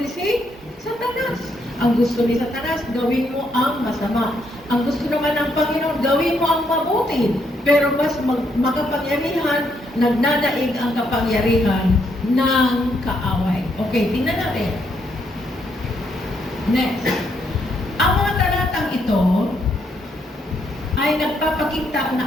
si Satanas. Ang gusto ni Satanas, gawin mo ang masama. Ang gusto naman ng Panginoon, gawin mo ang mabuti. Pero mas makapangyarihan, nagnanaig ang kapangyarihan ng kaaway. Okay, tingnan natin. Next. Ang mga talatang ito ay nagpapakita na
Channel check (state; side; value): normal; both; correlation 0.75